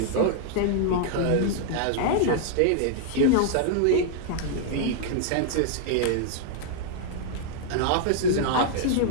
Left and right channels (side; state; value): both; different; correlation -0.01